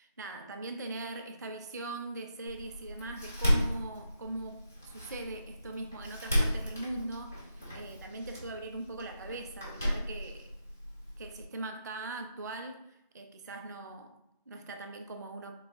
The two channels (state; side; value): inverted; both; correlation -0.82